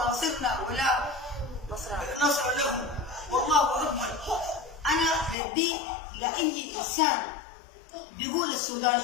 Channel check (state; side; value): drops out; right; at 5.4 s